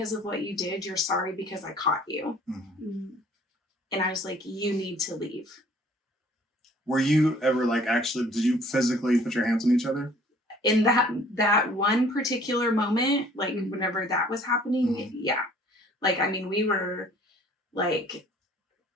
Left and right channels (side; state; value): both; normal; correlation 0.55